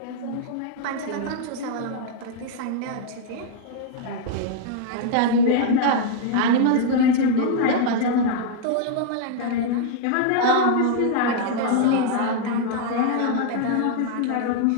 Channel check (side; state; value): both; different; correlation 0.00